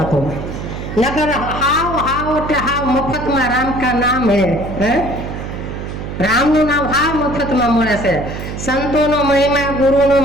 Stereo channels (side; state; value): right; noise; hum, 7 dB below the sound